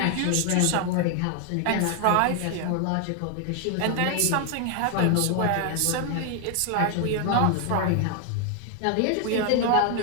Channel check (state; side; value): different; both; correlation 0.00